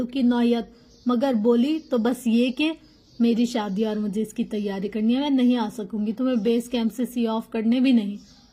کی نوعیت، مگر بولی تو بس یہ کہ میری شادی اور مجھے اس کی تیاری کرنی ہے، میں نہیں آ سکوں گی، تمہیں بیس کیمپ سے سی آف کرنے بھی نہیں۔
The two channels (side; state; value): both; identical; correlation 1.00